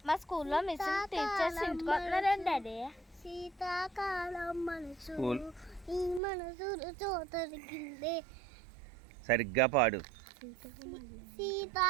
మా స్కూల్లో మిస్ టీచర్స్ ఇంటికి వస్తున్నారండి డాడీ. శీతాకాలం మనసు ఈ మనసు చోతరికిందే. సరిగ్గా పాడు.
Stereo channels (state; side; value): drops out; left; at 6.2 s